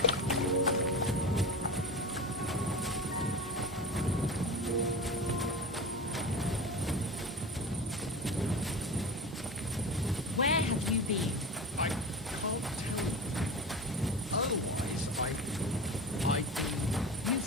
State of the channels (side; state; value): both; normal; correlation 0.29